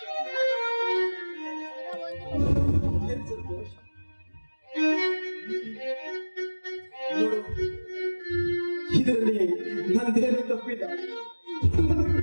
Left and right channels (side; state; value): both; inverted; correlation -1.00